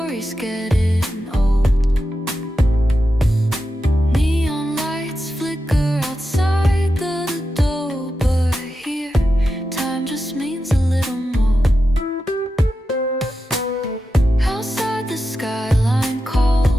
getting old. Neon lights flicker outside the door, but here time just means a little more. Outside the skyline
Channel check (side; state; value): both; normal; correlation 0.89